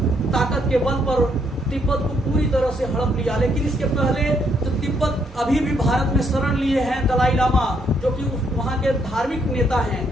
ताकत के बल पर तिब्बत को पूरी तरह से हड़प लिया। लेकिन इसके पहले जो तिब्बत अभी भी भारत में शरण लिए हैं दलाई लामा, जो कि वहाँ के धार्मिक नेता हैं,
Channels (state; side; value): normal; both; correlation 0.72